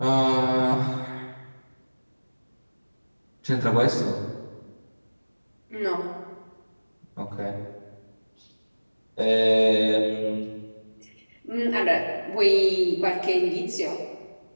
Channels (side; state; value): both; inverted; correlation -1.00